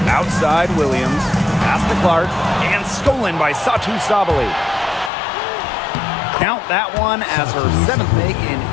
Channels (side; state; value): right; drops out; at 5.1 s